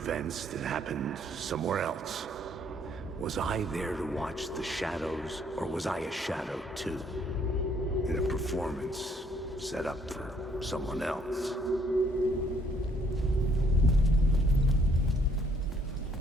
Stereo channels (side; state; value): both; normal; correlation 0.66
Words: events that happened somewhere else. Was I there to watch the shadows, or was I a shadow too? In a performance set up for someone else.